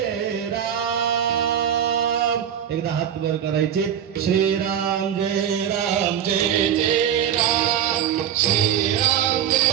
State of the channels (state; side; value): quieter; left; 9.3 dB